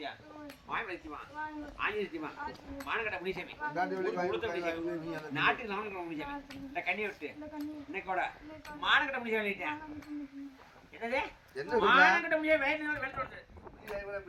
மாயமலைத்தியமா ஆஞ்சலித்தியமா மானகட்ட முனிசாமி நாட்டுக்கு நாமக்கல் முனிசாமி இந்த கண்ணியை விட்டு இன்னைக்கு கூட மானகட்ட முனிசாமி அழைச்சேன் என்னது மானகட்ட முனிசாமி வெளிப்படுத்து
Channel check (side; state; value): both; identical; correlation 1.00